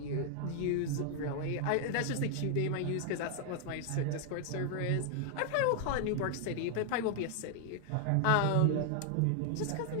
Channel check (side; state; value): both; different; correlation 0.00